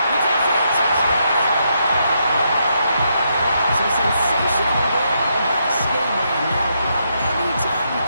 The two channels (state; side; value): inverted; both; correlation -0.79